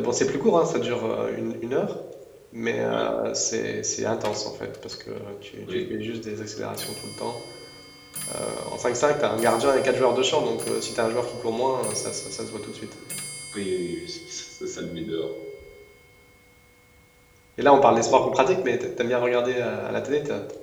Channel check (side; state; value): both; identical; correlation 1.00